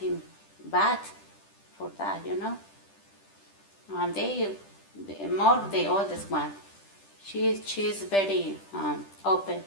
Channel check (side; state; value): right; late; 10 ms